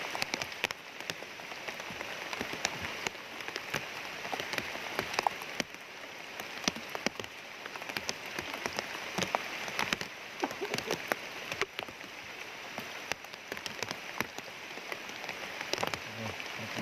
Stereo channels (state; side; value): identical; both; correlation 1.00